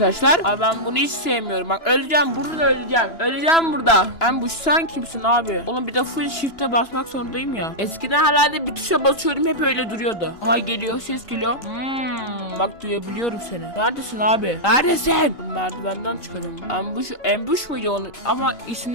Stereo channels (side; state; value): right; late; 2.9 ms